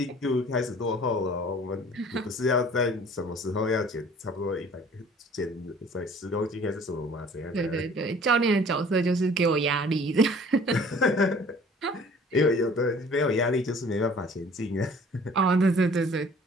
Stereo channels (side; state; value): both; normal; correlation 0.51